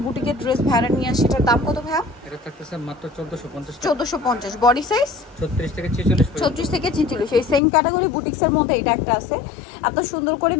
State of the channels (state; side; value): drops out; right; at 7.6 s